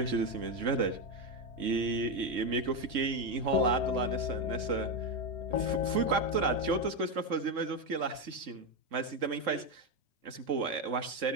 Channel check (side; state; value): left; late; 3.6 ms